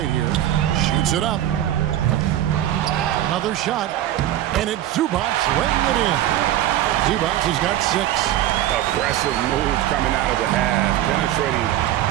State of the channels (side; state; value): left; quieter; 12.8 dB